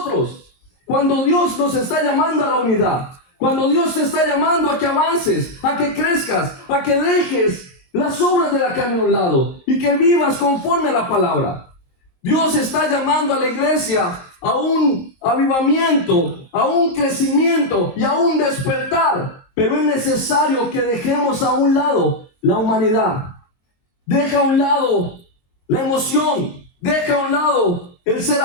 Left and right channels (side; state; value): right; late; 23 ms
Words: cuando Dios nos está llamando a la unidad, cuando Dios te está llamando a que avances, a que crezcas, a que dejes las obras de la carne a un lado y que vivas conforme a la palabra. Dios está llamando a la iglesia a un avivamiento, a un crecimiento y a un despertar. Pero es necesario que dejemos a un lado la humanidad. Deja a un lado la emoción. Deja a un lado el ser